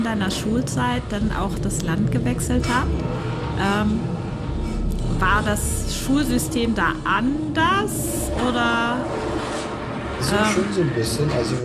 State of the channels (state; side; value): identical; both; correlation 1.00